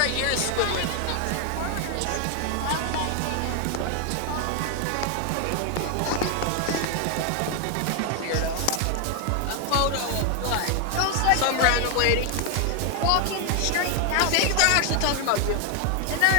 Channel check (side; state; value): both; different; correlation 0.00